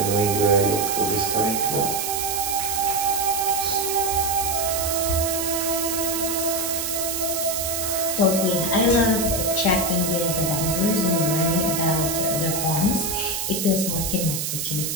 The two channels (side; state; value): right; noise; hiss, 2 dB below the sound